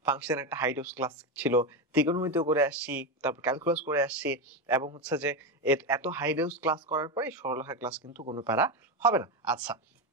ফাংশন একটা হাই ডোজ ক্লাস ছিল, ত্রিকোণমিতিও করে আসছি, তারপর ক্যালকুলাস করে আসছি, এবং হচ্ছে যে এত হাই ডোজ ক্লাস করার পরে সরলরেখা ক্লাস কিন্তু কোনো প্যারা হবে না। আচ্ছা,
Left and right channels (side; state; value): both; normal; correlation 0.13